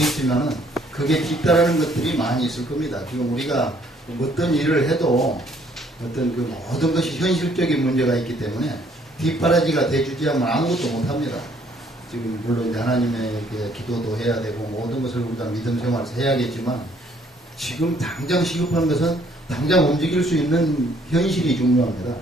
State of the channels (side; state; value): both; normal; correlation 0.64